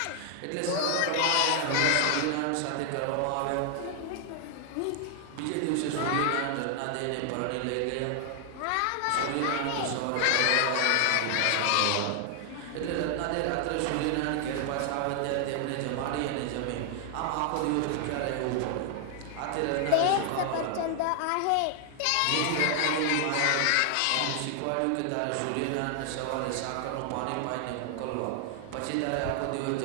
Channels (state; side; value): different; both; correlation 0.00